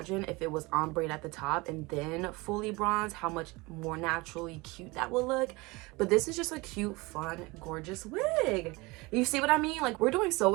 if it was ombre at the top and then fully bronze, how much more naturally cute that will look. But this is just a cute, fun, gorgeous wig. You see what I mean? Like, we're doing so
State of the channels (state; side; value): quieter; left; 24.0 dB